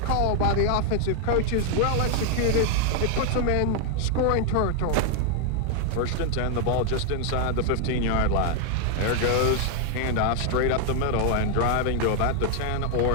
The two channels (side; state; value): both; different; correlation 0.00